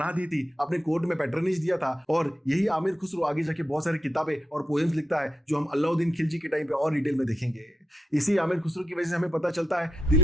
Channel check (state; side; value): normal; both; correlation 0.88